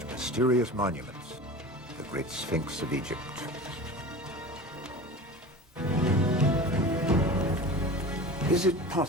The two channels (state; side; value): normal; both; correlation 0.34